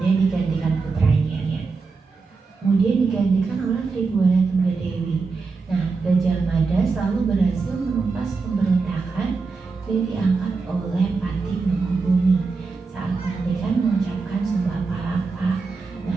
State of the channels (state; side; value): quieter; left; 4.4 dB